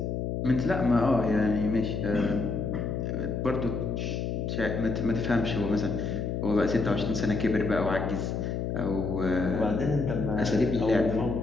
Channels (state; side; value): noise; left; hum, 2 dB below the sound